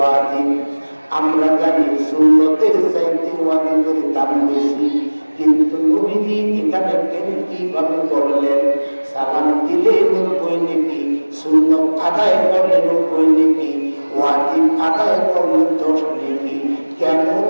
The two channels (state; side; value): inverted; both; correlation -1.00